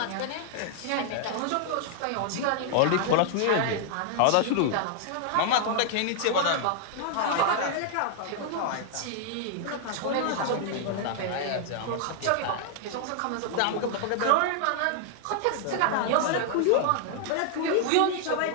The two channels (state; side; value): different; both; correlation 0.00